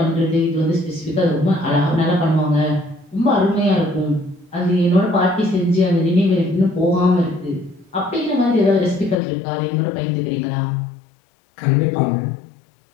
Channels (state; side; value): drops out; right; at 9.2 s